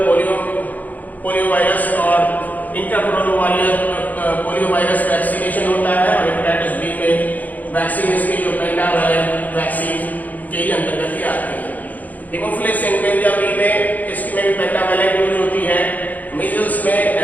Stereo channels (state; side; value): late; right; 0.080 ms